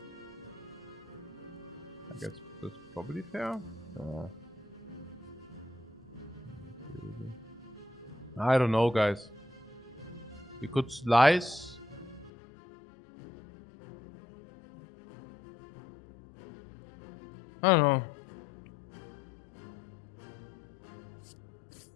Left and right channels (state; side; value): drops out; right; at 12.3 s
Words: I guess that's probably fair. I don't know, guys. We could slice. I don't know.